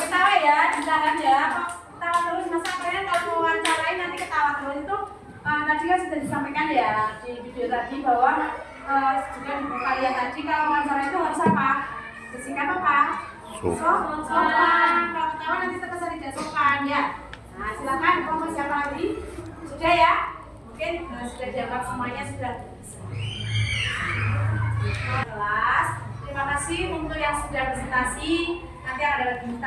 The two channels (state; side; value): identical; both; correlation 1.00